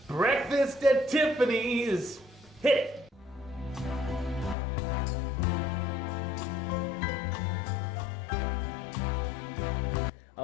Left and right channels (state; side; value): drops out; right; at 4.5 s